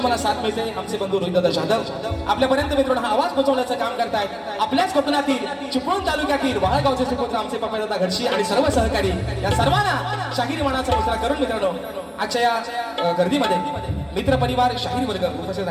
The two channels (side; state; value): both; identical; correlation 1.00